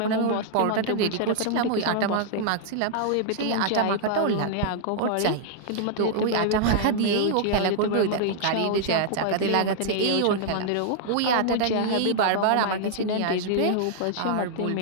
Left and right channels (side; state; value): both; different; correlation -0.01